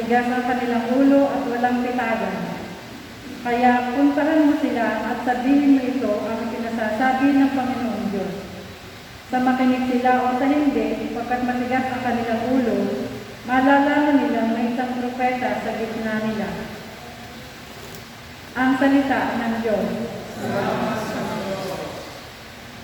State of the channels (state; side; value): identical; both; correlation 1.00